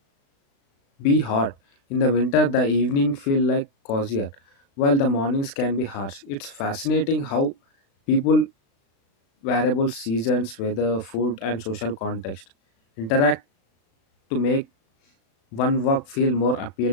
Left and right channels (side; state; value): right; late; 36 ms